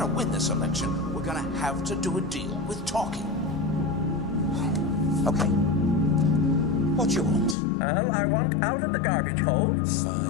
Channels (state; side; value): drops out; right; at 7.6 s